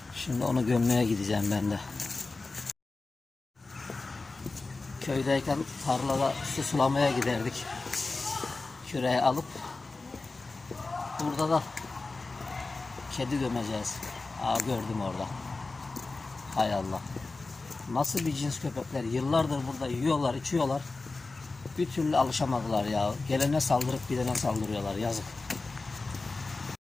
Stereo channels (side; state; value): right; quieter; 3.6 dB